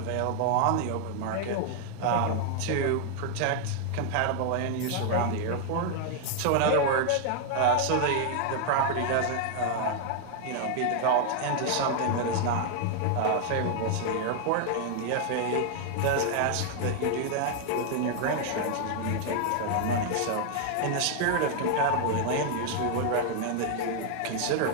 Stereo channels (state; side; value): different; both; correlation 0.00